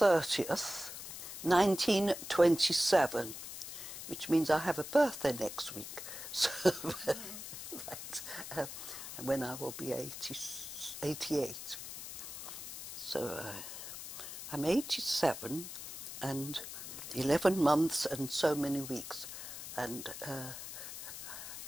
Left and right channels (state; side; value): noise; left; hiss, 9 dB below the sound